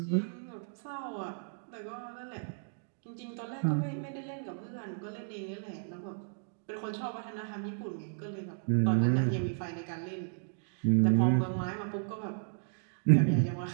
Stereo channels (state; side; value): silent; left; digital silence